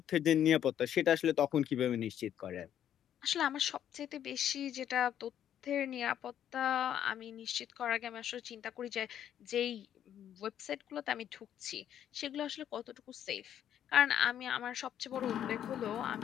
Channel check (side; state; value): right; quieter; 10.2 dB